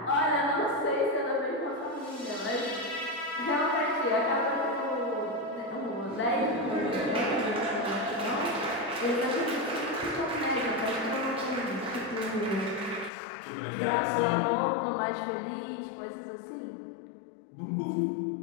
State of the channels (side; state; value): right; drops out; at 13.1 s